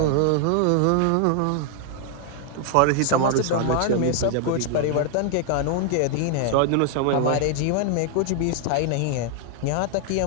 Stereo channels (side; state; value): both; different; correlation 0.00